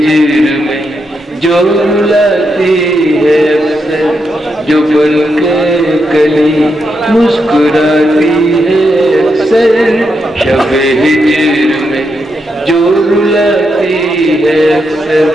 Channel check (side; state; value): both; normal; correlation 0.83